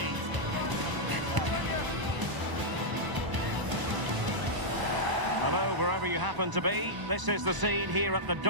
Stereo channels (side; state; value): left; late; 1.0 ms